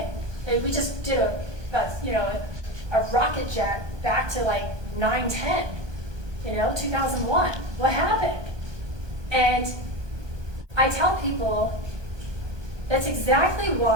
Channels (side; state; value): left; late; 1.2 ms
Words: We just did a rocket jet back to like 9/10, 2001. What happened? And I tell people that's exactly